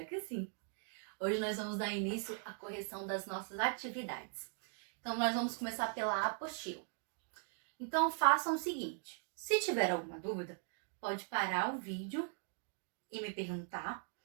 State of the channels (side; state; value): left; silent; 51 dB below the other